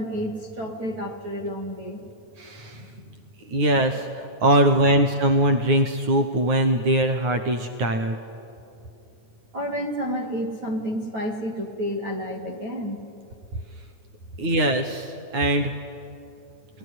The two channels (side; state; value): left; late; 9.5 ms